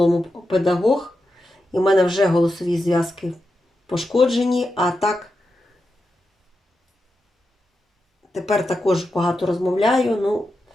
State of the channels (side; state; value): both; normal; correlation 0.88